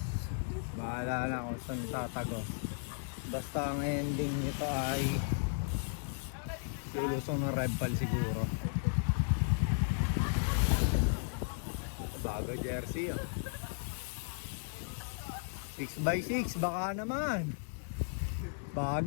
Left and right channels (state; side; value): silent; right; 54 dB below the other